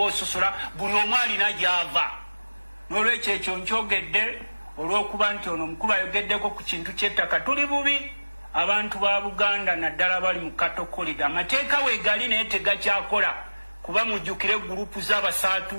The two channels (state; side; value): inverted; both; correlation -1.00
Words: ososola buli omu alina gy'ava. N'olwekyo ekyo nkyogedde olw'okuba nti ono omukulu ayogeddeko ku kintu ky'ettaka. Tuli bubi abantu ba Buganda naddala bali mu katokolida. Amateeka weegali naye tegakyakola kuba mujjukire gurupu